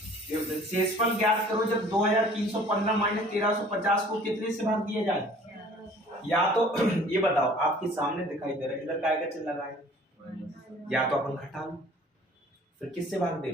शेषफल ज्ञात करो जब 2315 माइनस 1350 को कितने से भाग दिया जाए, या तो ये बताओ आपके सामने दिखाई दे रहा है इधर काय का चिन्ह लगा है, या तो अपन घटा लो फिर किससे भाग दे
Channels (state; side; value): normal; both; correlation 0.51